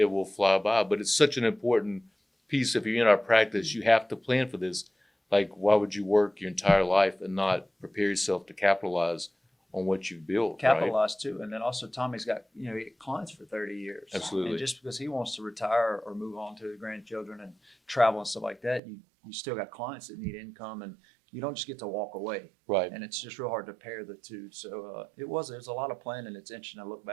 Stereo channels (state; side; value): drops out; left; at 18.8 s